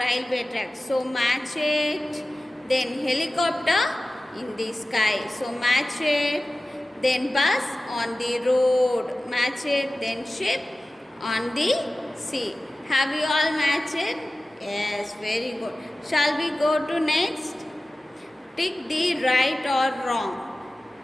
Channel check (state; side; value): normal; both; correlation 0.96